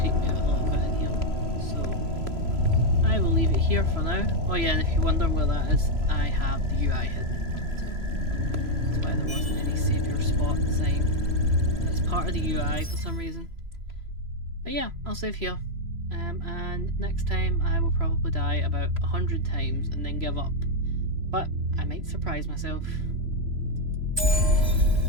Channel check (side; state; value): left; late; 3.0 ms